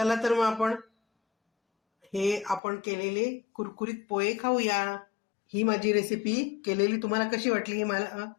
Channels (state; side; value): drops out; right; at 2.6 s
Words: तर मग आपण केलेले कुरकुरीत पोहे खाऊया. ही माझी रेसिपी केलेली तुम्हाला कशी वाटली हे मला